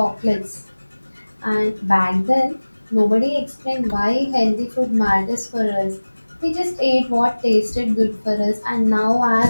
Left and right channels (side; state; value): both; inverted; correlation -1.00